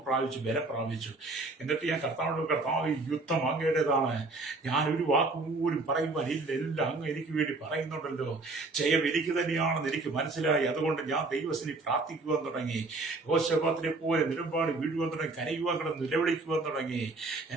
പ്രാപിച്ചു, ബലം പ്രാപിച്ചു. എന്നിട്ട് ഞാൻ കർത്താവ്, ഈ യുദ്ധം അങ്ങയുടേതാണ്, ഞാൻ ഒരു വാക്ക് പോലും പറയുവാൻ ഇല്ല, എല്ലാം അങ്ങ് എനിക്ക് വേണ്ടി പറയുന്നുണ്ടല്ലോ, ജയം എനിക്ക് തന്നെയാണെന്ന് എനിക്ക് മനസ്സിലായി. അതുകൊണ്ട് ഞാൻ ദൈവത്തിന് പ്രാർത്ഥിക്കുവാൻ തുടങ്ങി. യഹോശാഫാത്തിനെ പോലെ നിലപാട് വീഴുവാൻ തുടങ്ങി, കരയുവാൻ കിടന്ന് നിലവിളിക്കുവാൻ തുടങ്ങി.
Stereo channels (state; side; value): quieter; left; 3.4 dB